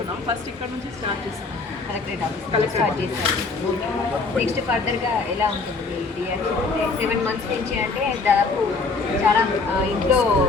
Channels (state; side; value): quieter; right; 4.1 dB